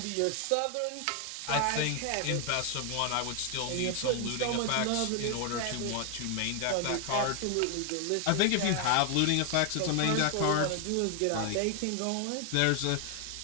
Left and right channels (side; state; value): both; different; correlation 0.00